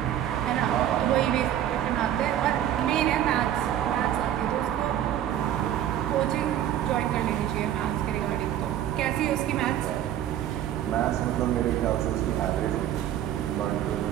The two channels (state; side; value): quieter; left; 11.3 dB